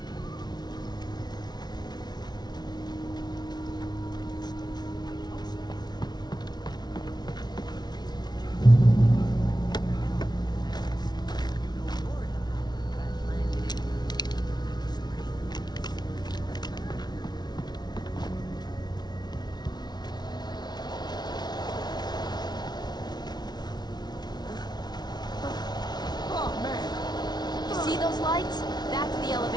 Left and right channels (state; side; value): late; right; 0.20 ms